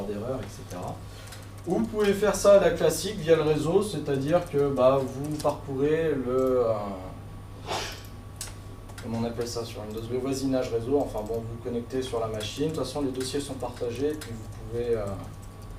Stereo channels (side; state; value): both; identical; correlation 1.00